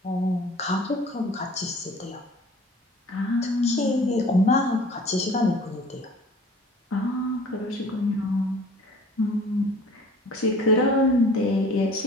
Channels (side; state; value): both; normal; correlation 0.48